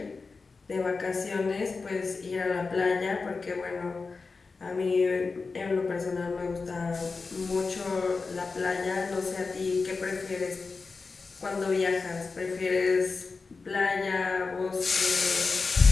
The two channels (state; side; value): quieter; right; 4.3 dB